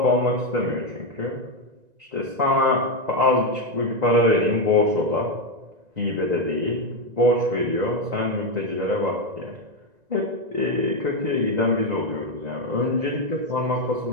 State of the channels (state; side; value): late; left; 1.9 ms